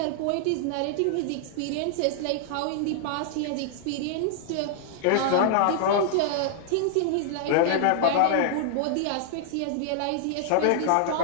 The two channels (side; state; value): both; different; correlation -0.01